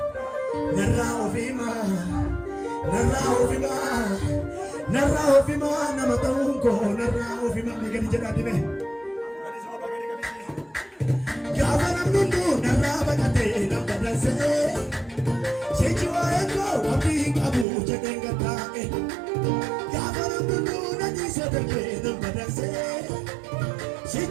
narra ofima nama taunko narra ofima megani jadi me gavana mundu narra bakate nambadan se sejua eko abdi abu jadenga tae gavana mundu nadi sedeke nambadan se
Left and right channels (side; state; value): left; drops out; at 17.7 s